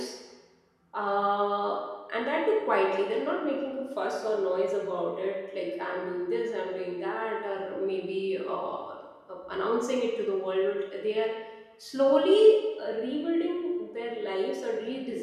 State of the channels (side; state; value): both; identical; correlation 1.00